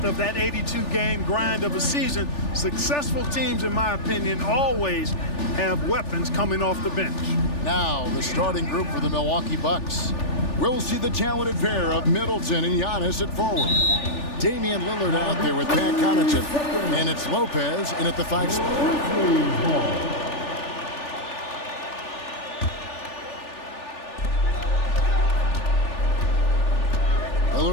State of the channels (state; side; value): late; right; 3.4 ms